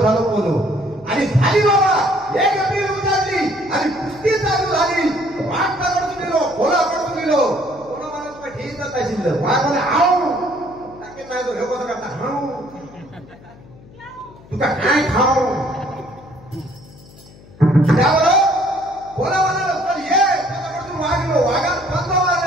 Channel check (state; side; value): noise; left; hum, 22 dB below the sound